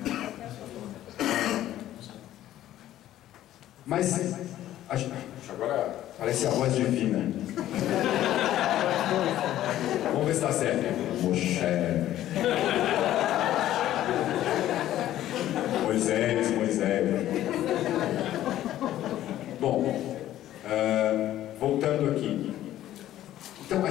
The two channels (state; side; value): quieter; right; 13.1 dB